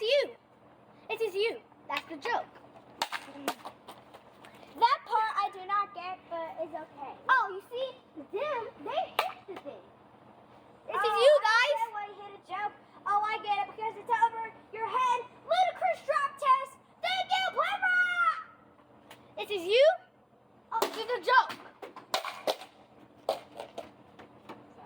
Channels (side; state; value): both; identical; correlation 1.00